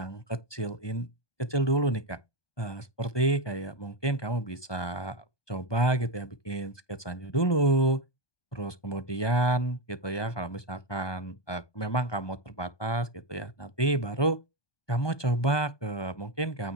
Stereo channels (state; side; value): late; right; 1.2 ms